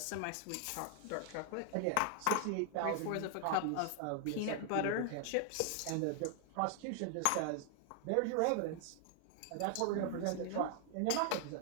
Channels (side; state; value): both; different; correlation 0.00